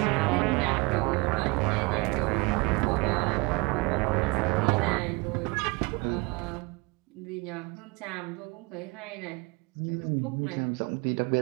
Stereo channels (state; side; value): quieter; left; 27.9 dB